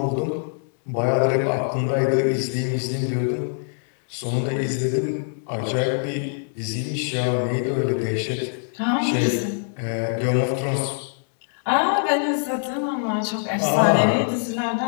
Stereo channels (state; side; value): silent; right; digital silence